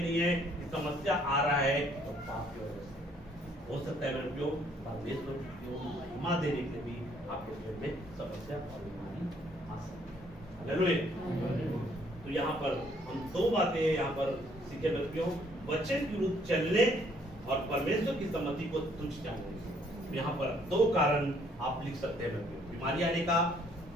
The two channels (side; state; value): both; normal; correlation 0.65